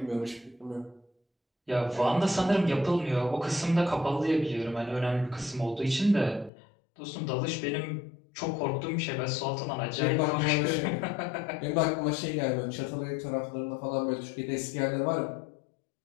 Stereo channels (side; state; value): right; drops out; at 6.5 s